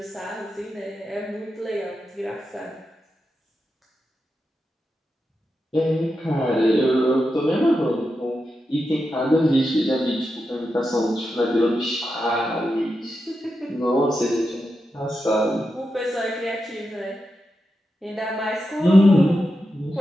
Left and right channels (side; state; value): both; normal; correlation 0.88